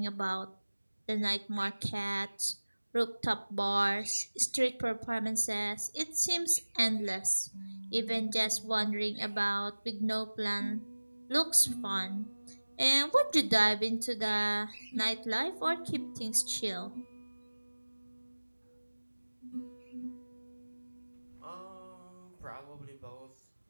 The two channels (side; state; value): both; inverted; correlation -1.00